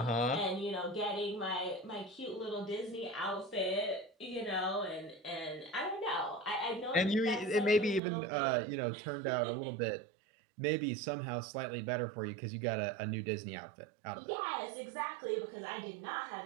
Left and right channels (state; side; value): drops out; left; at 8.0 s